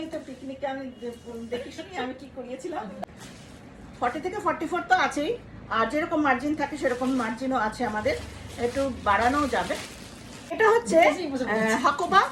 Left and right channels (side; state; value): both; identical; correlation 1.00